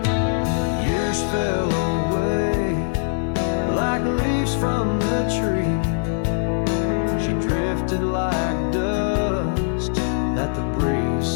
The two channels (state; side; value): silent; right; digital silence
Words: Years fell away like leaves from the tree. She drifted like dust that the breeze